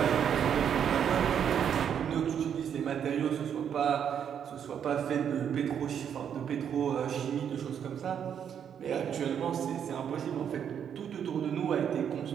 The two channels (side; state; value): left; quieter; 8.4 dB